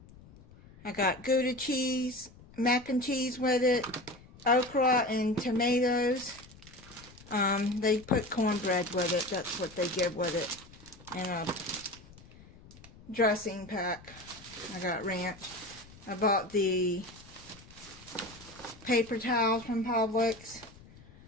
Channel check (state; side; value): noise; left; rumble, 22 dB below the sound